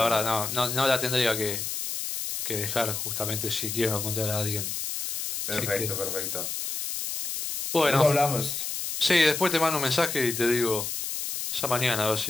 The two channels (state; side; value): noise; left; hiss, 4 dB below the sound